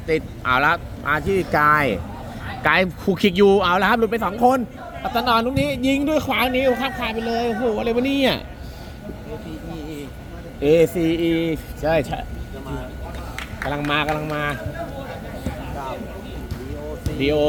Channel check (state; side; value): identical; both; correlation 1.00